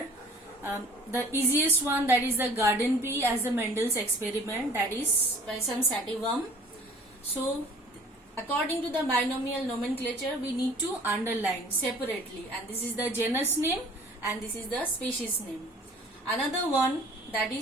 The easiest one, that is the garden pea, as the Mendel's experiment, that is Pisum sativum. So according to the binomial nomenclature, we need to underline separately, and this is the genus name and this is the species name. Another one, that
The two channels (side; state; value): both; normal; correlation 0.50